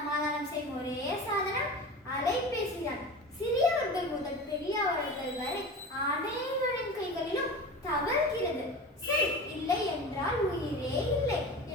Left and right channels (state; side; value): normal; both; correlation 0.32